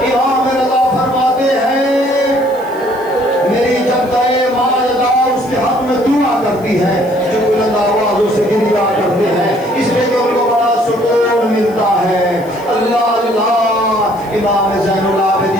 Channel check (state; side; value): noise; left; hiss, 25 dB below the sound